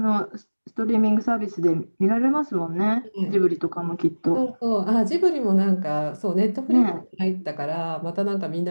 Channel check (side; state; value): both; inverted; correlation -1.00